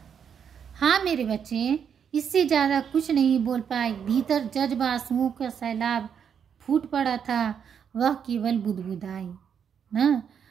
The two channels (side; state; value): left; quieter; 7.6 dB